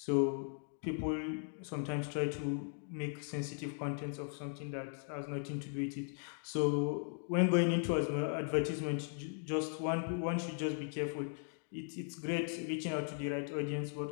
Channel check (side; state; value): right; silent; 52 dB below the other